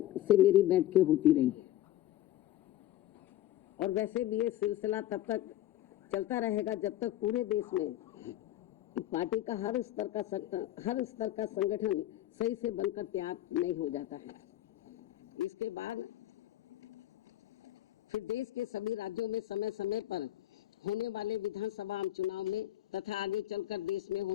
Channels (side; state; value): right; quieter; 13.7 dB